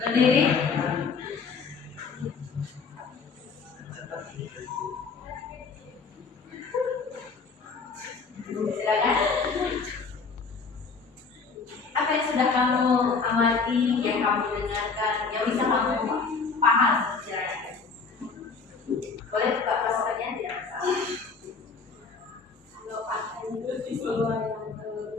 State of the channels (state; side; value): quieter; right; 4.9 dB